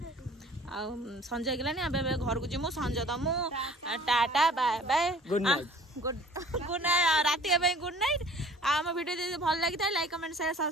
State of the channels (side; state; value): both; normal; correlation 0.50